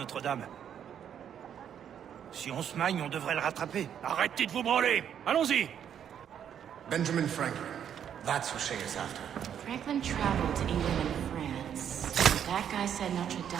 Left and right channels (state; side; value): quieter; left; 9.0 dB